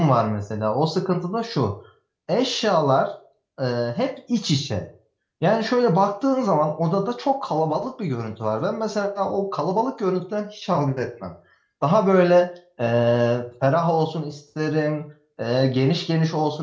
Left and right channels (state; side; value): identical; both; correlation 1.00